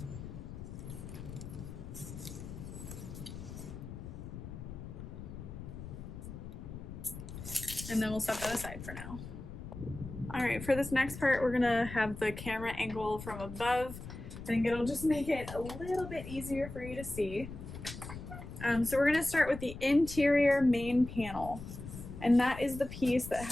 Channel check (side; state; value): left; noise; rumble, 11 dB below the sound